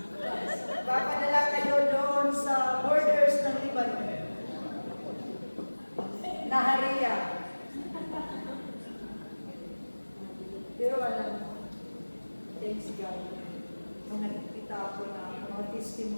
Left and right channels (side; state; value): both; inverted; correlation -1.00